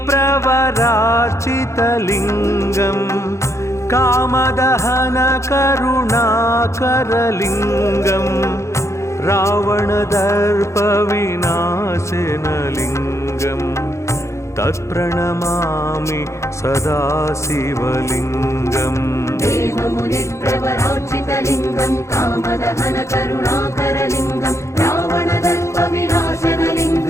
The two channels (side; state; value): right; late; 0.14 ms